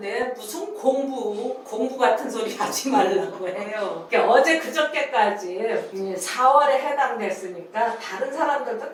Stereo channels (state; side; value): identical; both; correlation 1.00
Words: 무슨 공부 같은 소리 하지 말라고 해요. 그러니까 어제 그저께까지 4월에 해당됐으니까 다른 사람들도